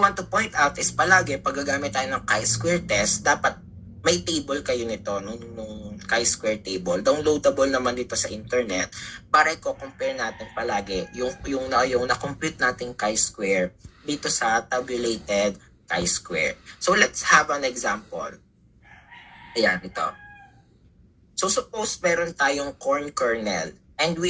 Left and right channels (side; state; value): both; identical; correlation 1.00